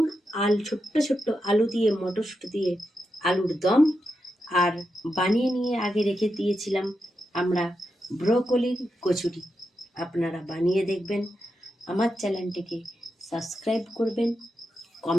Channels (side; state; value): both; normal; correlation 0.87